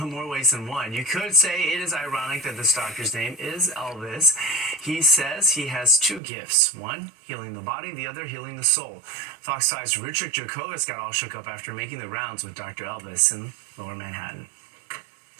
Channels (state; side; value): drops out; left; at 6.2 s